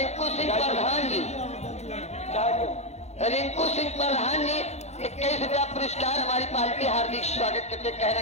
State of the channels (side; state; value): right; late; 0.32 ms